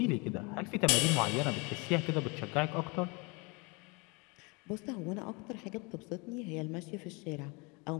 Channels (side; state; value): right; quieter; 29.1 dB